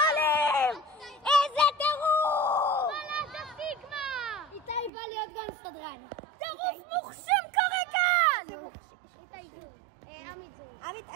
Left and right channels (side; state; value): left; drops out; at 4.9 s